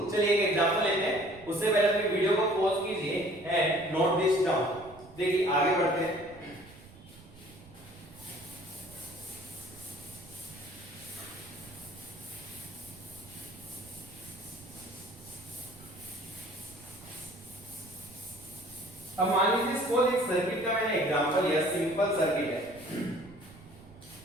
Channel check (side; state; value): right; noise; rumble, 21 dB below the sound